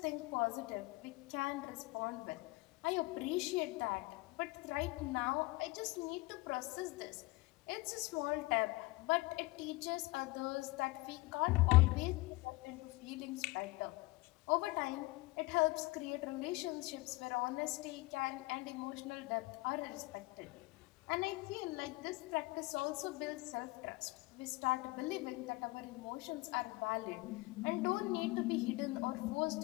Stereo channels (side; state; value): right; quieter; 22.3 dB